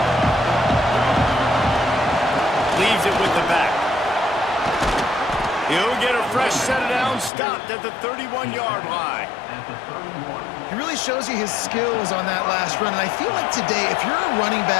Leaves it with the back. He'll get a fresh set of downs, stopped at the 31-yard line. He really shows you his skills on that last run, and I feel like today, if you're a running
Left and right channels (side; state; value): right; drops out; at 7.3 s